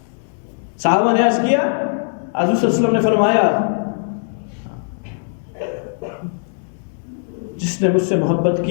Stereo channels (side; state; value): right; silent; 66 dB below the other